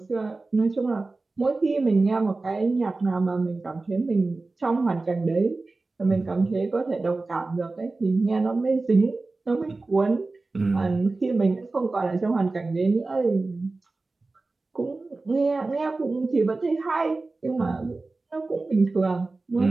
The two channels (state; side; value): quieter; left; 3.5 dB